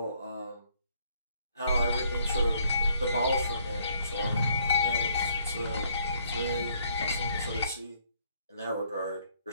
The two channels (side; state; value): both; inverted; correlation -0.66